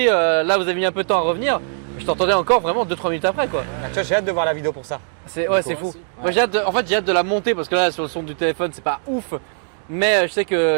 là, vous avez mis un peu de temps à revenir. Je t'entendais encore vraiment 2-3 minutes après, quoi. Ah, tu vois, j'ai hâte de voir la vidéo pour ça. C'est ouais, c'est Moi fou. aussi. Moi, j'ai hâte en fait, j'ai hâte de la monter parce que là, sur le son du téléphone, c'est pas ouf. Mais je sais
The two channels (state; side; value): silent; left; digital silence